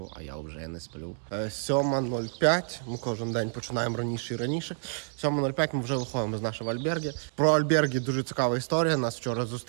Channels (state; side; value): silent; left; digital silence